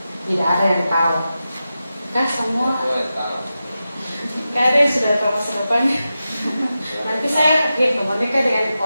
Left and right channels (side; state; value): both; inverted; correlation -0.92